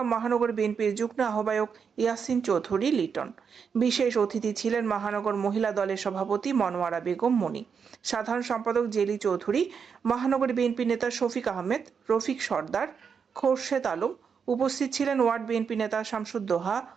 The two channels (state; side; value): quieter; left; 6.4 dB